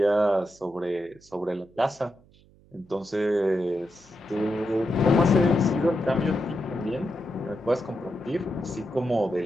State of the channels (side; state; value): right; noise; hum, 28 dB below the sound